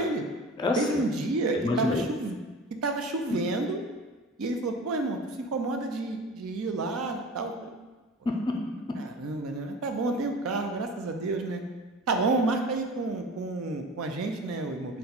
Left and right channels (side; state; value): both; normal; correlation 0.38